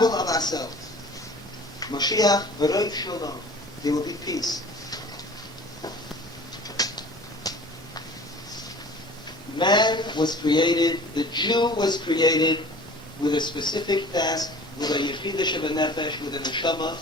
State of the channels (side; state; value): both; normal; correlation 0.44